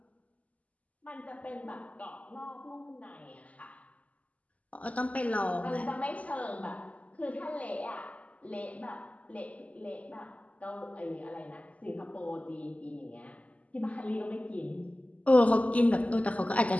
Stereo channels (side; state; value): right; late; 0.071 ms